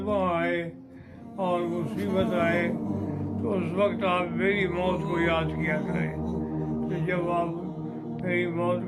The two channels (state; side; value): identical; both; correlation 1.00